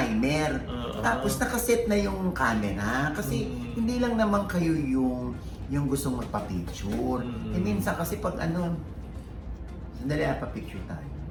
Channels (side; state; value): both; identical; correlation 1.00